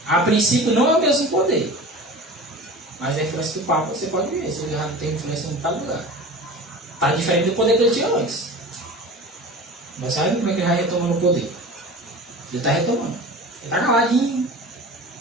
A princípio não é o mesmo poder. Mas a influência do Papa você pode ver, se ele já tem influência em cada lugar. Está diferente do poder que ele tinha antes. Mas sabe como é que ele vai retomando o poder? Ele está retomando. Ele está caladinho.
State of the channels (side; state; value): both; normal; correlation 0.36